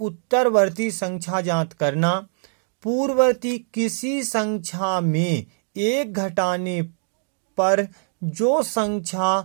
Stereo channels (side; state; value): left; silent; digital silence